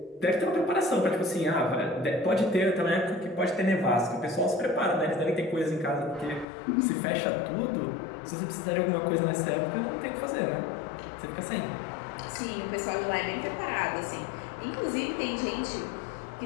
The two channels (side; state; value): right; drops out; at 6.5 s